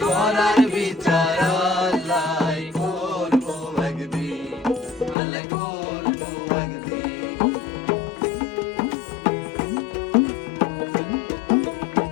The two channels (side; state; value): right; drops out; at 5.2 s